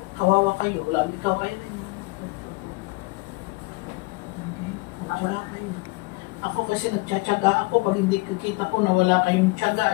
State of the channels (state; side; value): quieter; right; 25.2 dB